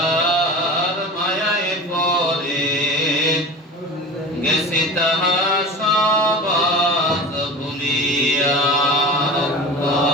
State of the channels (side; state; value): both; normal; correlation 0.33